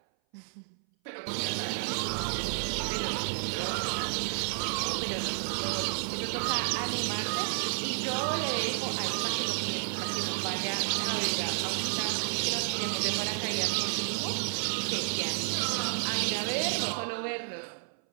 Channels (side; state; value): left; silent; 57 dB below the other